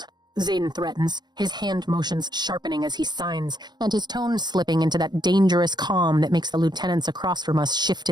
Xaden threatens, his hand motions sharpening as he signs, and his tone slipping into that dangerous calm that makes the lieutenants across from us shift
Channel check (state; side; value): late; left; 0.21 ms